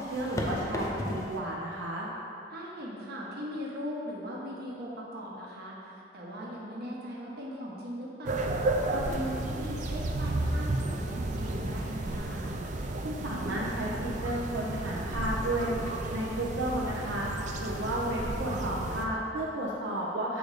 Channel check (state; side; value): normal; both; correlation 0.45